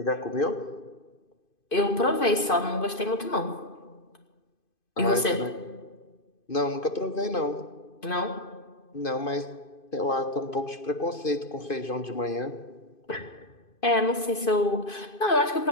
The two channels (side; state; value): right; late; 2.5 ms